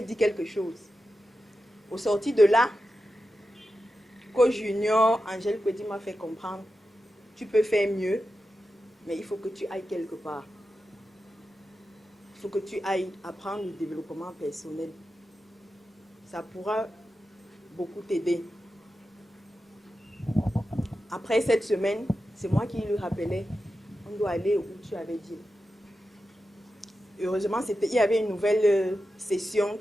quelque chose. Au sorti de là, Co Junior, Angèle Kwedi m'a fait comprendre, tu peux faire mieux, mais il faut que tu ailles quelque part. Il faut que tu ailles apprendre le développement personnel. Ça pourra beaucoup t'aider. Après cette semaine, c'est moi qui lui rappelais, on doit aller où tu avais dit. Heureusement, il y avait une nouvelle session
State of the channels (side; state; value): both; normal; correlation 0.91